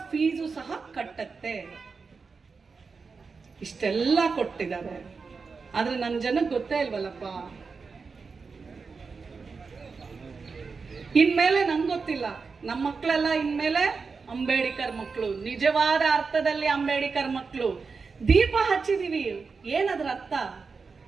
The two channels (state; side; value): quieter; left; 4.9 dB